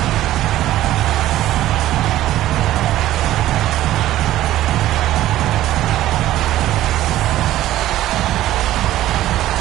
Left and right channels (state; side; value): quieter; left; 14.2 dB